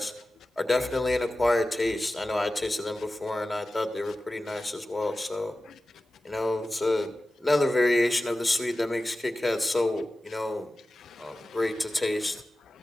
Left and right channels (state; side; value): normal; both; correlation 0.95